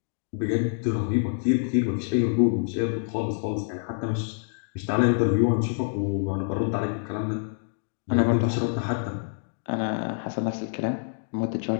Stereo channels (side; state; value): right; silent; digital silence